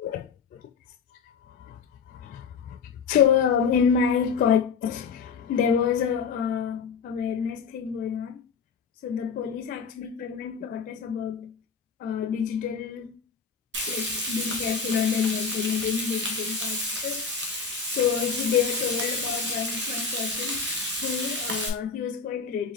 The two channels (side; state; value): right; quieter; 5.8 dB